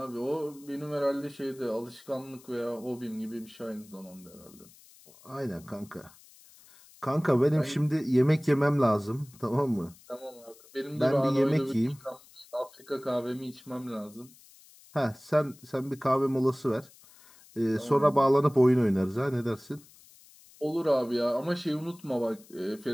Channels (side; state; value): left; noise; hiss, 24 dB below the sound